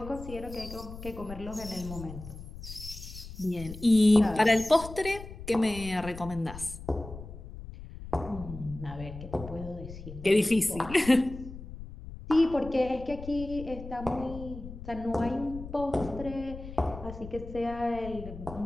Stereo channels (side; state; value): left; noise; rumble, 12 dB below the sound